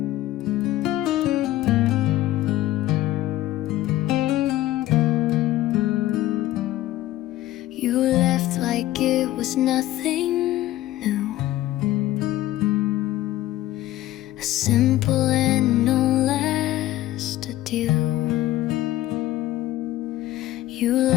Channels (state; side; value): quieter; right; 15.1 dB